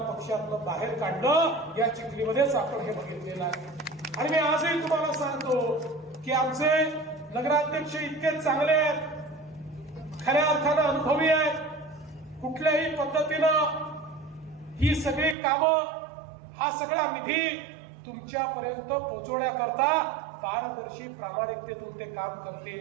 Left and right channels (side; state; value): left; drops out; at 15.4 s